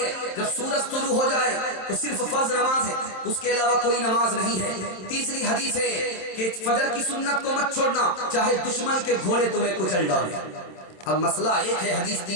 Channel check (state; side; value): late; right; 27 ms